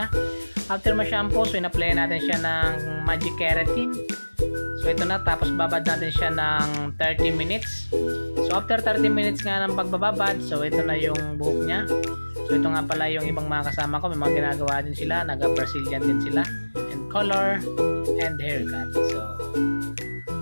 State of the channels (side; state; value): both; inverted; correlation -1.00